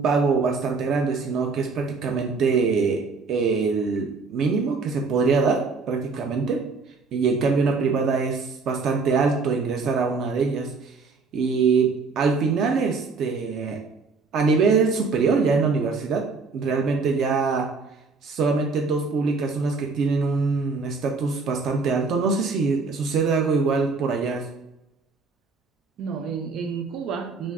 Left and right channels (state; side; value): quieter; left; 4.4 dB